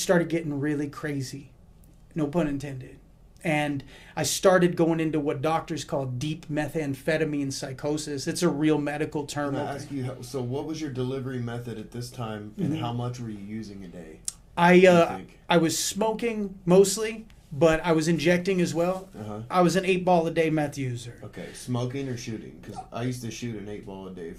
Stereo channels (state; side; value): identical; both; correlation 1.00